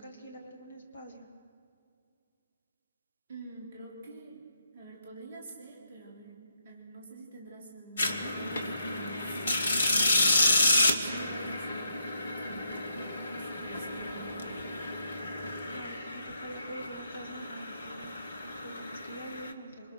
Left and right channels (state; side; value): inverted; both; correlation -0.78